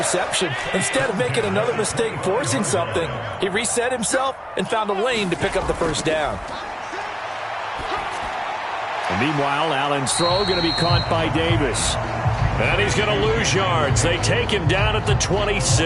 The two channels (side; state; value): both; identical; correlation 1.00